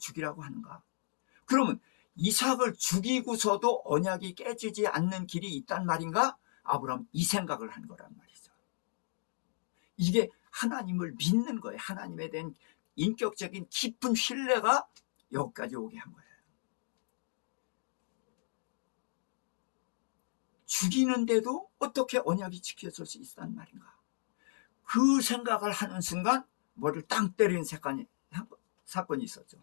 하는가? 그러면 이삭을 죽이고서도 언약이 깨지지 않는 길이 있단 말인가? 아브라함 이 생각을 한 거란 말이죠. 이게 하나님을 믿는 거예요. 하나님에 대한 인격적인 깊은 신뢰가 여기까지 오게 한 거예요. 죽이는데도 어떻게 언약이 지켜질 수 있단 말인가? 그 생각을 하는 순간 머리를 땅 때리는 사건이 있었죠.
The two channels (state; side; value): silent; right; digital silence